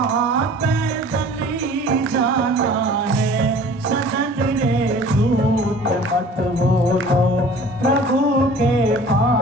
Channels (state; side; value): normal; both; correlation 0.47